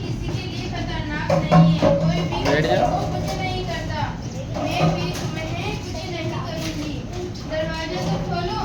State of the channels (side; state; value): both; identical; correlation 1.00